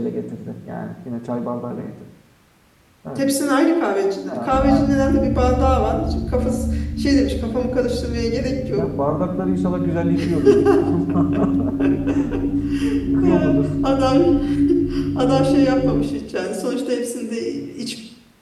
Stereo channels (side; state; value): both; identical; correlation 1.00